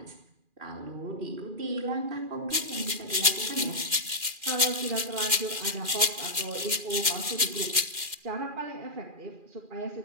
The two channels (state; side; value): late; left; 2.4 ms